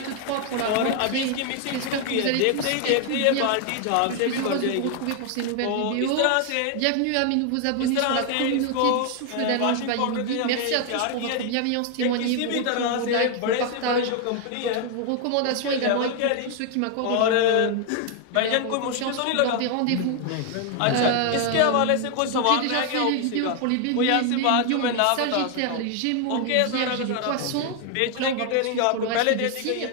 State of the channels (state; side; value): different; both; correlation 0.00